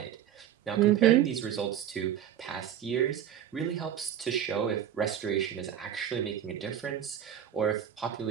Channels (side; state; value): left; quieter; 10.1 dB